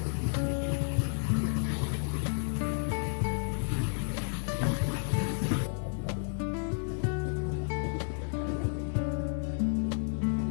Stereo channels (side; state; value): right; silent; digital silence